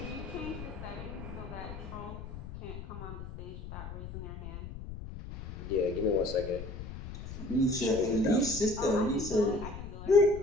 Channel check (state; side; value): noise; left; rumble, 10 dB below the sound